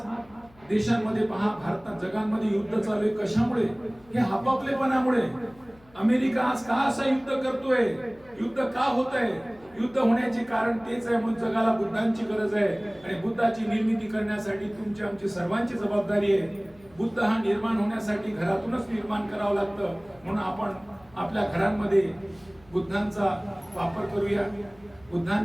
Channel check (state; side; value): noise; left; hum, 27 dB below the sound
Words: देशांमध्ये पहा, भारतात जगांमध्ये युद्ध चालू आहे. कशामुळे? हे आपापलेपणामुळे. अमेरिका आज का असं युद्ध करतोय? युद्ध का होत आहे? युद्ध होण्याचे कारण तेच आहे. म्हणून जगाला बुद्धांची गरज आहे आणि बुद्धाची निर्मिती करण्यासाठी तुमची आमची सर्वांची जबाबदारी आहे. बुद्ध हा निर्माण होण्यासाठी घरातूनच निर्माण करावं लागतं. म्हणून आपण आपल्या घरांमध्ये बुद्धांचा वापर करूया,